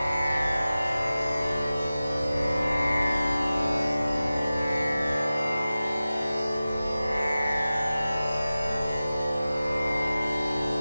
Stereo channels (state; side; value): inverted; both; correlation -0.96